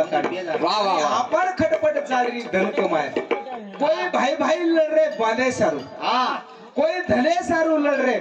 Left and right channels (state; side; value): identical; both; correlation 1.00